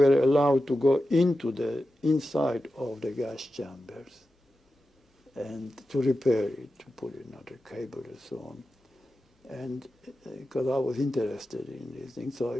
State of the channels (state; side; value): normal; both; correlation 0.92